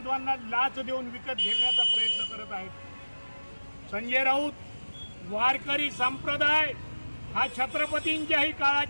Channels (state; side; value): inverted; both; correlation -1.00